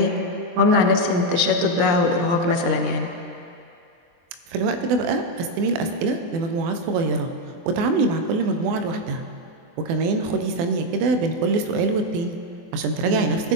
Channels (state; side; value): late; left; 23 ms